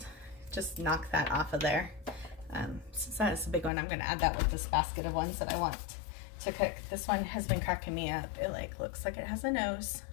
knock that off of there. Since that is a big one, I'm gonna add that with this basket of ones that I want to cook. This one has been cracking me up. It like looks like it has a nose,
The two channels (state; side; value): drops out; right; at 3.7 s